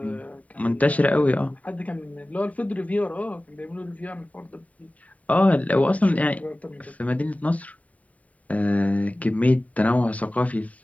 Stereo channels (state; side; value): late; right; 0.069 ms